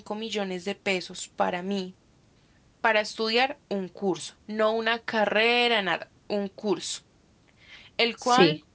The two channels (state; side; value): identical; both; correlation 1.00